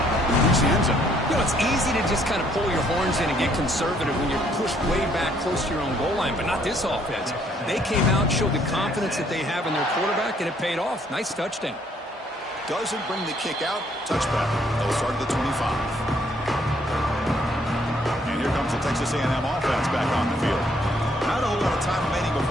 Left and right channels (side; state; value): both; normal; correlation 0.66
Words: reach the end zone. You know, it's easy to just kind of pull your horns in and get conservative when you're pushed way back close to your own goal line, but not this offense. They came out, showed the confidence that they have in their quarterback, and it paid off. Nice touchdown. Doesn't bring the kick out. Touchback. They'll start at the 25. And here comes the Texas A&M offense back on the field. Not a whole lot of time remaining